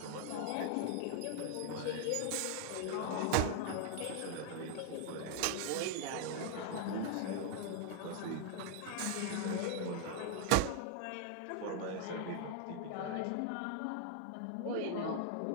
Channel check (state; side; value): different; both; correlation 0.00